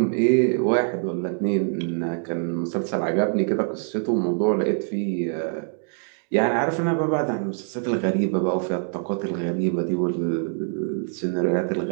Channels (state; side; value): silent; left; 56 dB below the other